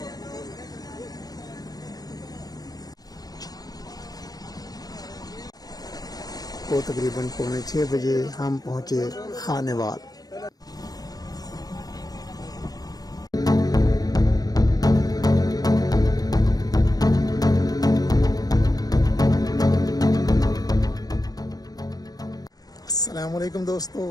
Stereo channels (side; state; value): right; late; 0.18 ms